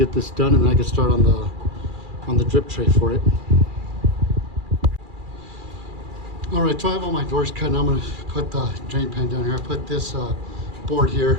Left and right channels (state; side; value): late; left; 2.4 ms